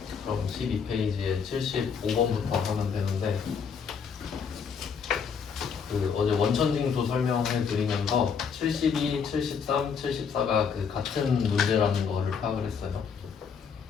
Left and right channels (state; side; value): quieter; right; 6.4 dB